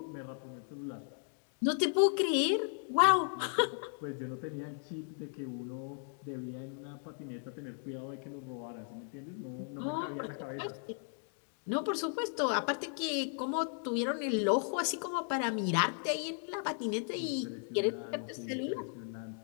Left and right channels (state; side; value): silent; right; 54 dB below the other